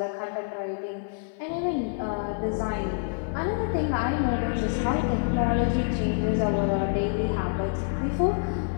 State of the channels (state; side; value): silent; right; 55 dB below the other